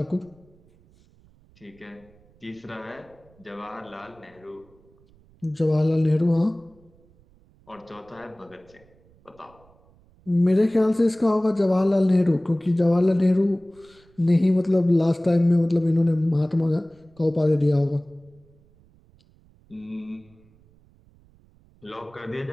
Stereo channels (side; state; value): right; noise; rumble, 30 dB below the sound